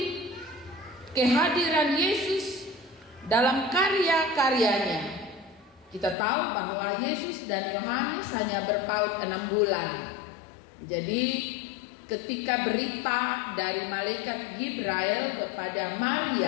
kehadiran Yesus dalam karya-karyanya. Kita tahu bahwa Yesus dan Yohanes hanya berpaut 6 bulan. Jadi ketika berita dari malaikat Gibrail kepada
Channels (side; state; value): right; drops out; at 6.2 s